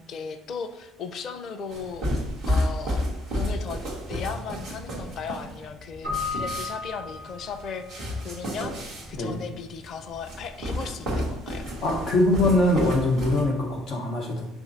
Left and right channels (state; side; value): normal; both; correlation 0.62